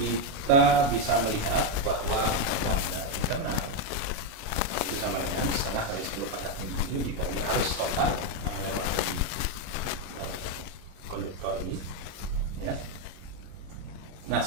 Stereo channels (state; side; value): late; left; 36 ms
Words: bisa melihat bahwa lambda internal itu sama dengan setengah kali 10 pangkat min 7 dikali arus total yang melewati konduktor ini, ya. Nah,